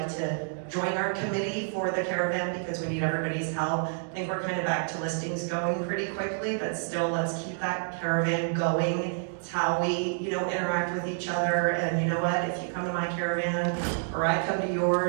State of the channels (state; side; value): silent; left; digital silence